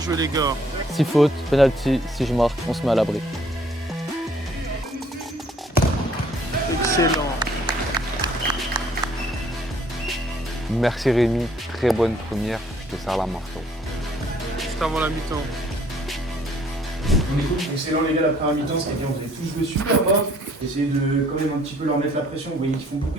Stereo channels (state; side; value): normal; both; correlation 0.61